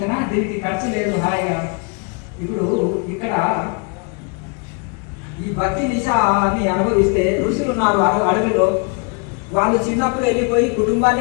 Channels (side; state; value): right; quieter; 34.6 dB